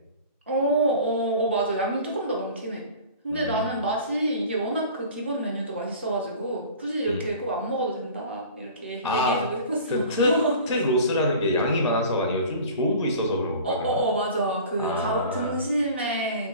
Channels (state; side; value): inverted; both; correlation -0.41